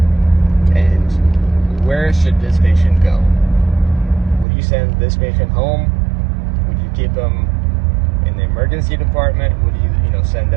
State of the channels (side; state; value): left; drops out; at 4.5 s